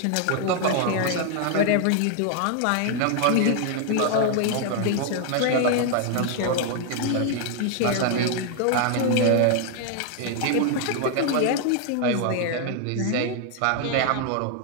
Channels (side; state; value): both; different; correlation 0.00